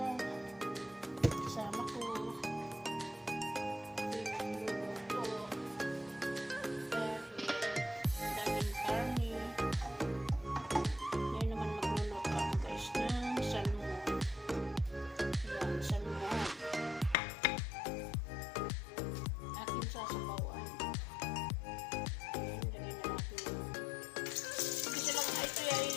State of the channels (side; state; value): right; drops out; at 17.2 s